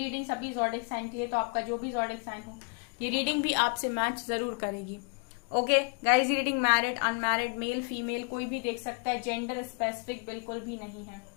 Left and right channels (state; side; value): quieter; right; 35.1 dB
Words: सभी ज़ोडिएक साइन की है, तो आपका जो भी ज़ोडिएक साइन हो ये रीडिंग भी आपसे मैच जरूर करेगी। Okay guys, reading married, unmarried, male female कोई भी देख सकता है, जेंडर स्पेसिफिक बिल्कुल भी नहीं है।